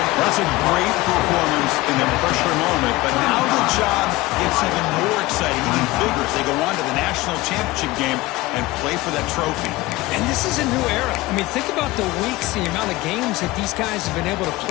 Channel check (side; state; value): right; quieter; 19.6 dB